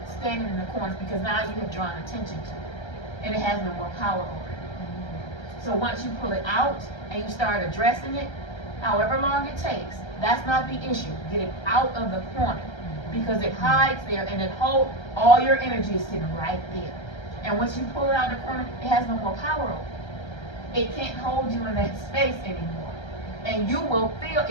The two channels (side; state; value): right; late; 1.3 ms